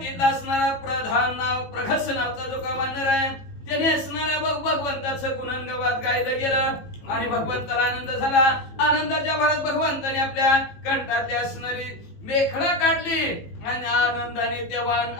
असणारा प्रधान नाव प्रगस नावचा जो का वानर आहे त्याने असणाऱ्या भगवंताचं गुणगान गायलं गेलं आणि भगवंताला आनंद झाला. आनंदाच्या भरात भगवंताने आपल्या कंठातली असणारी मेखळा काढली आणि आनंदाने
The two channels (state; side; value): late; right; 18 ms